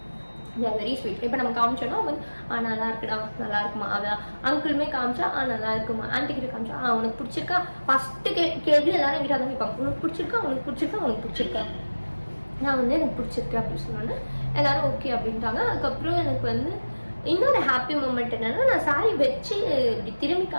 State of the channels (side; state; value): both; inverted; correlation -1.00